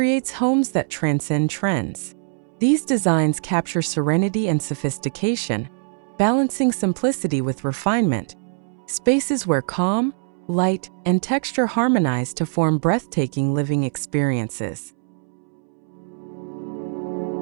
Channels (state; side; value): silent; left; 64 dB below the other